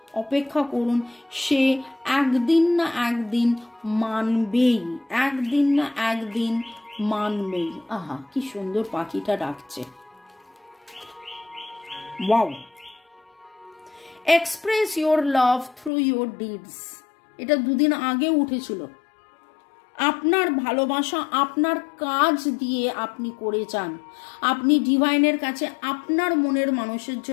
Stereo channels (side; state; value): right; drops out; at 15.9 s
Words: অপেক্ষা করুন। সে একদিন না একদিন মানবেই। আহা, কি সুন্দর পাখিটা ডাকছে। Wow. Express your love through your deeds. এটা 2 দিন আগে উঠেছিল। আপনার ভালোবাসা আপনার কাজ দিয়ে আপনি করে যান। আপনি ডিভাইনের কাছে আপনার মনের মানুষের